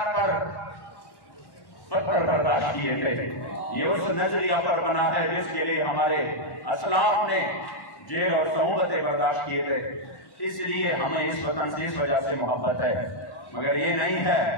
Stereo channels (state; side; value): late; right; 1.1 ms